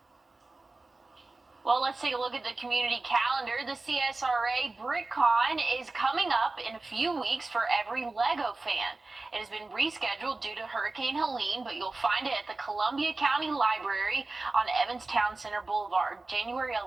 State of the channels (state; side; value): quieter; left; 3.3 dB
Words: Well, let's take a look at the community calendar. The CSRA BrickCon is coming up in a few weeks for every Lego fan. It has been rescheduled due to Hurricane Helene, but you'll find it at the Columbia County Library on Evans Town Center Boulevard, January